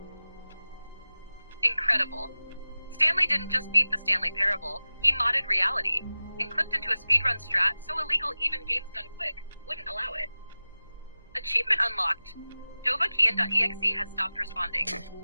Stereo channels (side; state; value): both; inverted; correlation -0.97